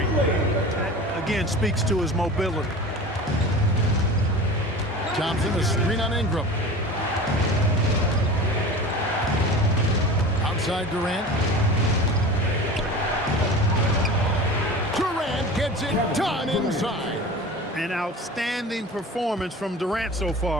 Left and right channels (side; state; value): both; normal; correlation 0.35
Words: That, again, speaks to his mobility. Thompson, a screen on Ingram. Outside Durant. Durant gets it done inside. An outstanding performance from Durant so